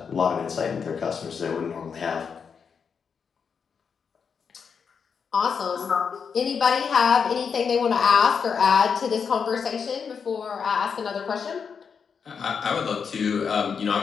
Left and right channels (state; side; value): quieter; right; 6.3 dB